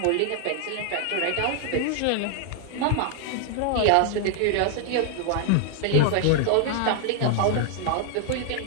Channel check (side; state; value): both; different; correlation 0.00